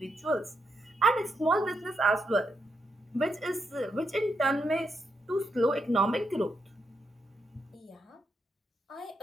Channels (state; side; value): normal; both; correlation 0.81